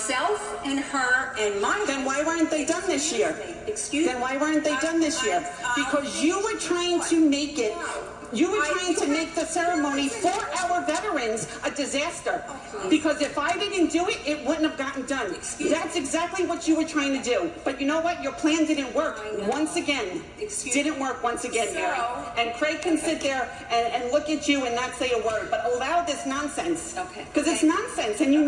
and her and my... Then why weren't they done this year? Excuse me? Then why weren't they done this year? Because you were trying to make it You were trying to make the ceremony for our veterans a disaster. Because if I didn't do it, it wouldn't have gotten done. That's exactly what you were trying to do. But you know what? Your plan didn't work once again. Didn't work once again, Mary. And Craig can sit there and look at you and not say a word, but allow this nonsense. Okay. Because it's nonsense, and you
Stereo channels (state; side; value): identical; both; correlation 1.00